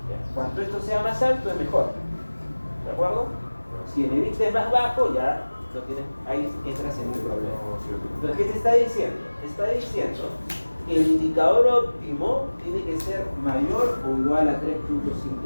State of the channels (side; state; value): both; inverted; correlation -1.00